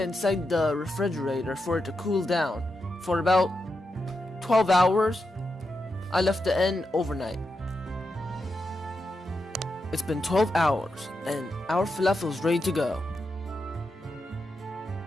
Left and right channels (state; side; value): normal; both; correlation 0.87